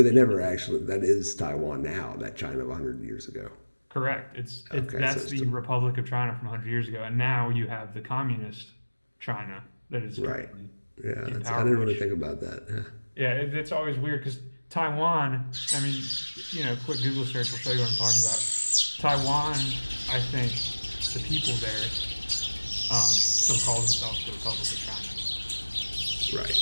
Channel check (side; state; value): both; inverted; correlation -1.00